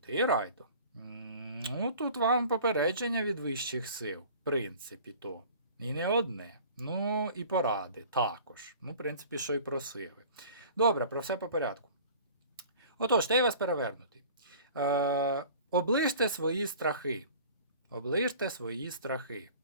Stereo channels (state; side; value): inverted; both; correlation -0.45